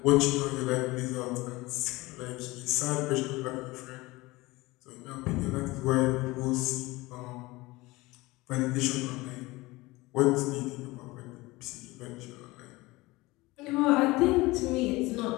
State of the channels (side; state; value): right; quieter; 21.2 dB